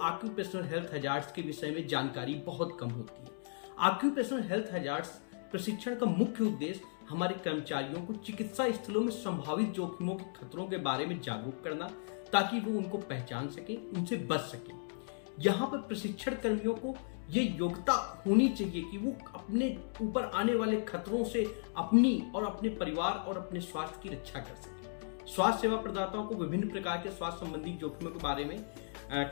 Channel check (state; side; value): silent; right; digital silence